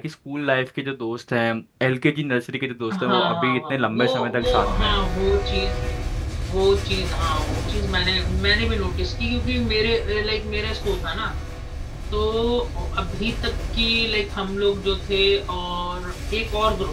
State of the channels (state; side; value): identical; both; correlation 1.00